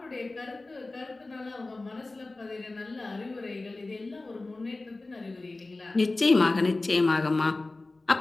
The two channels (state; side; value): quieter; right; 3.2 dB